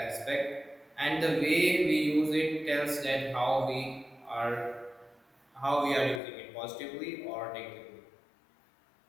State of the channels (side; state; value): right; drops out; at 6.2 s